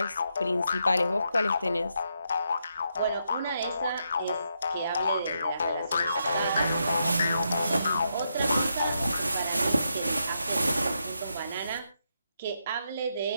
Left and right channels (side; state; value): both; inverted; correlation -0.81